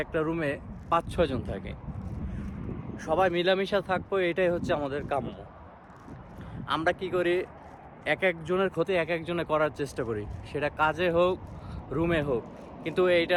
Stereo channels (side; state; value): both; identical; correlation 1.00